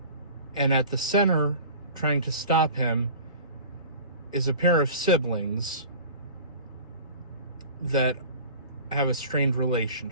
And at the center, trying to stop him, is a pair of siblings that have a strained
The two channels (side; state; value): both; inverted; correlation -0.40